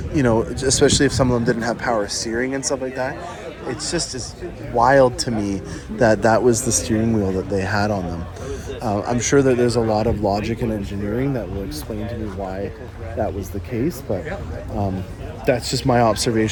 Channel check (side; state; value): both; identical; correlation 1.00